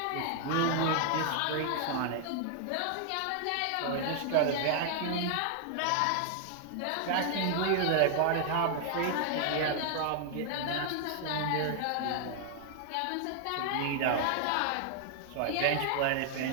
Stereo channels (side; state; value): both; different; correlation 0.00